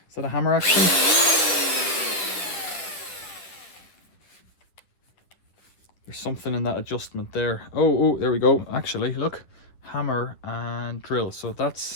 Is that a hammer action? There's something in that adjustment there. Oh, there we go. Actually, look. Hammer and drill. So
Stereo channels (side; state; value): right; late; 9.7 ms